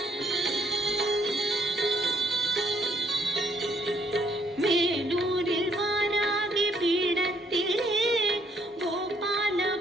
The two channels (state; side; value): normal; both; correlation 0.69